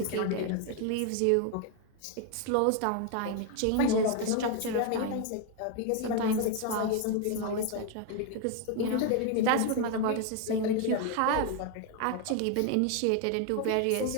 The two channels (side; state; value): both; different; correlation 0.01